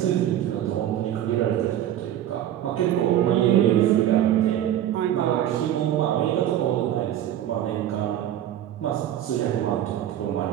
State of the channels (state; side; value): quieter; left; 11.7 dB